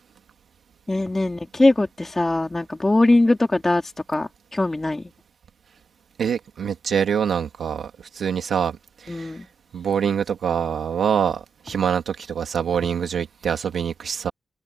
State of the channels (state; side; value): normal; both; correlation 0.88